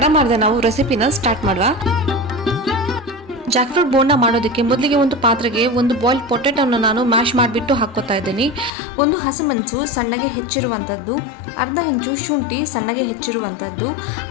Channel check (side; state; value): right; drops out; at 8.7 s